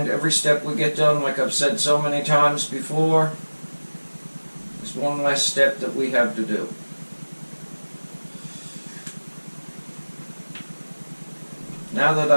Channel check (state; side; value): inverted; both; correlation -1.00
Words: every step we get done, like I've said so many times before, is one less step that we have to do. Now that